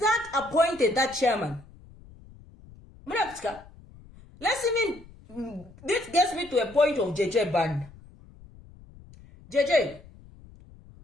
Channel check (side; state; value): left; noise; rumble, 22 dB below the sound